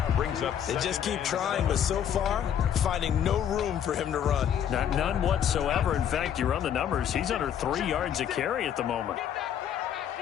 They just keep trying, but so far, finding no room for him to run. None whatsoever. In fact, you run the numbers. He's under 3 yards a carry at the moment.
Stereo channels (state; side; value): quieter; right; 9.3 dB